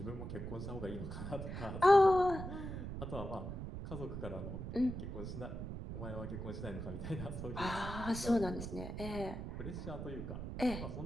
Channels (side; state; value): right; noise; rumble, 6 dB below the sound